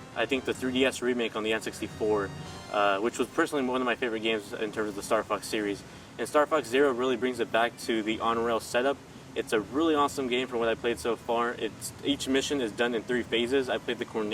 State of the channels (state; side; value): identical; both; correlation 1.00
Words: I think, the 3DS remake on the N64, which was personally one of my favorite games in terms of the Star Fox series. And Star Fox Zero really brings it back to the on-rail setup. It's a really awesome game from what I played so far. Each mission is done in 3 phases. I played the